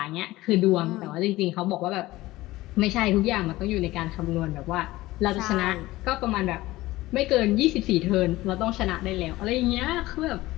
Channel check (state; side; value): quieter; right; 18.0 dB